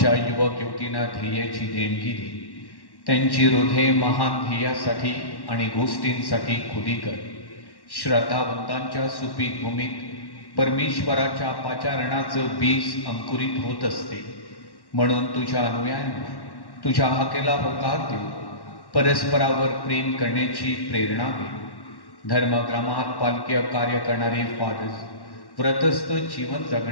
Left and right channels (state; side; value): late; right; 1.1 ms